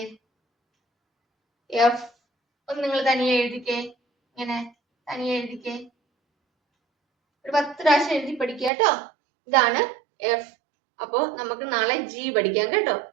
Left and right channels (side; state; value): left; drops out; at 8.7 s